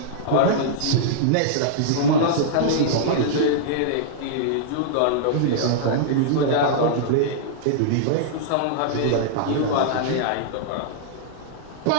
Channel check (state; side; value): different; both; correlation -0.02